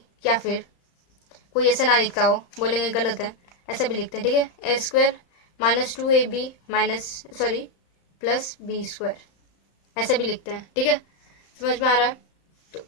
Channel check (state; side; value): late; right; 34 ms